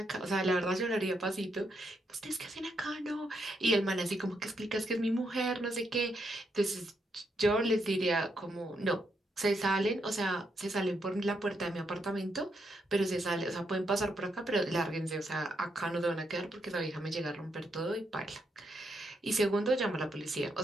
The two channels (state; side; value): normal; both; correlation 0.79